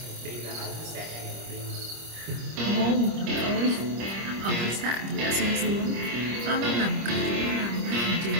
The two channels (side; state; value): left; late; 25 ms